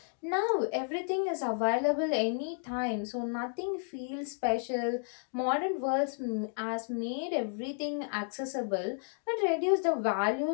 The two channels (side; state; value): right; silent; 56 dB below the other